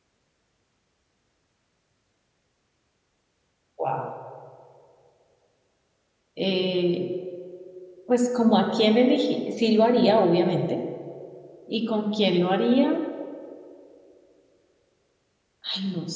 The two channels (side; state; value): both; identical; correlation 1.00